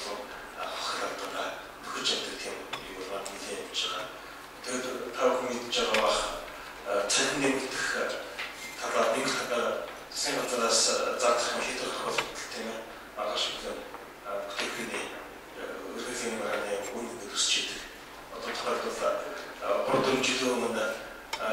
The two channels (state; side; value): identical; both; correlation 1.00